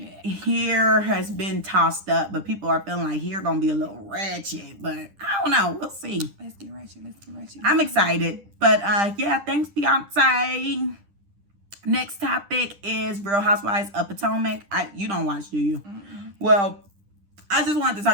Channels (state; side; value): late; left; 10 ms